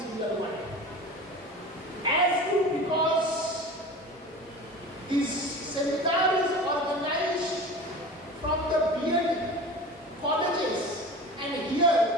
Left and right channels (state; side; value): normal; both; correlation 0.35